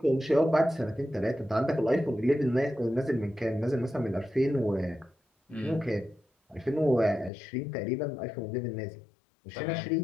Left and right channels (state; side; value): drops out; right; at 7.3 s